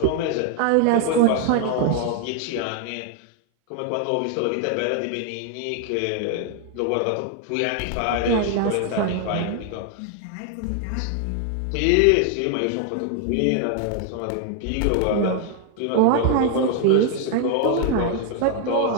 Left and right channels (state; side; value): different; both; correlation 0.00